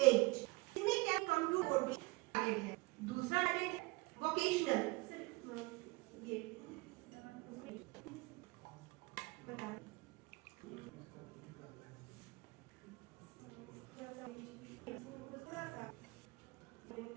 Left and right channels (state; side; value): quieter; left; 24.0 dB